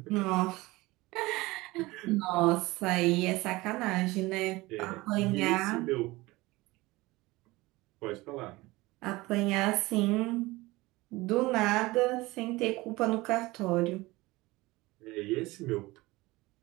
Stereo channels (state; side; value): quieter; left; 20.8 dB